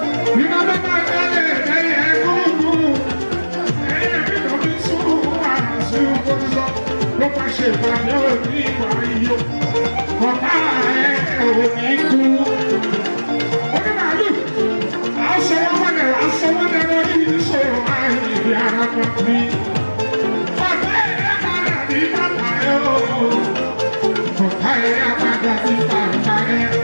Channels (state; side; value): inverted; both; correlation -1.00